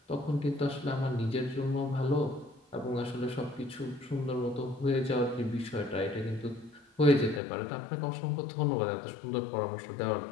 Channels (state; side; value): drops out; right; at 7.4 s